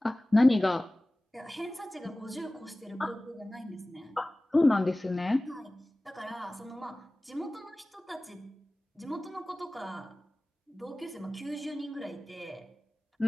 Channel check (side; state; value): both; normal; correlation 0.98